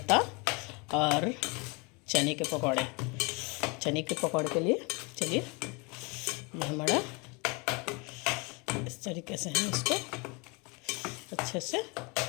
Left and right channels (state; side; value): quieter; right; 29.4 dB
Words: और चने के पकौड़े। चने के पकौड़े के लिए चलिए, ये हमारा इस तरीके से हम इसको अच्छे से